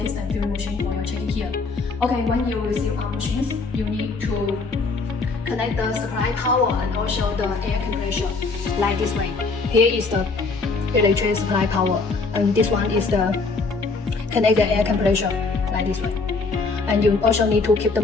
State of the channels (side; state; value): right; quieter; 4.0 dB